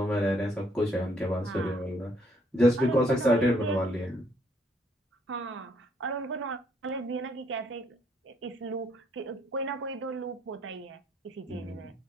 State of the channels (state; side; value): normal; both; correlation 0.68